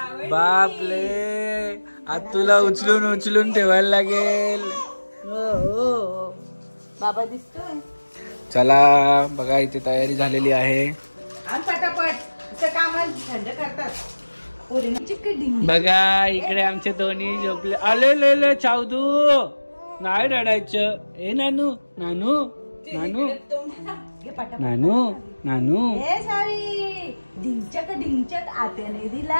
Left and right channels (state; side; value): inverted; both; correlation -1.00